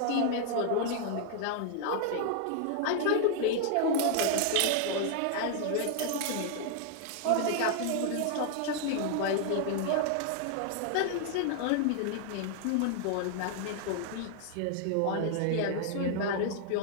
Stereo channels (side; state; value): both; different; correlation 0.00